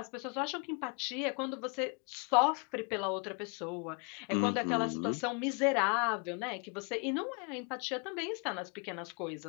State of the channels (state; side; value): quieter; right; 35.4 dB